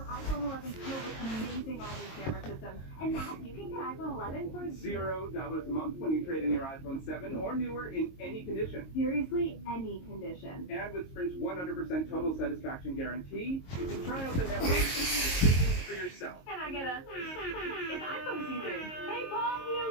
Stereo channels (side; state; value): right; late; 22 ms